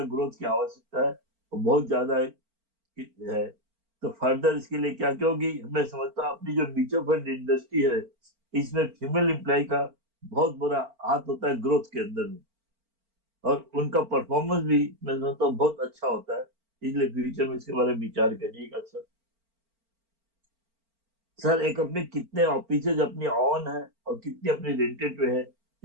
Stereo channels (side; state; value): left; late; 4.4 ms